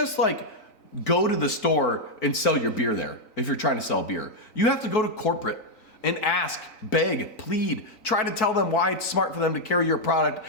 go to the store and sell your beer there if you're trying to sell beer. You have to go to corporate and ask, beg, plead, try to tell them why it's smart for them to carry your product,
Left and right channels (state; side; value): late; right; 3.9 ms